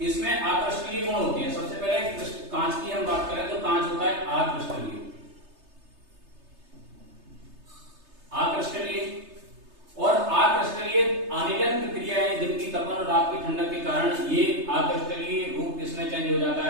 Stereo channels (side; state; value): left; late; 3.3 ms